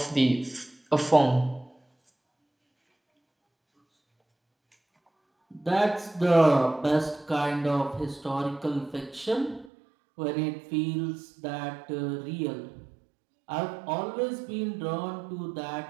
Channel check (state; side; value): drops out; left; at 9.7 s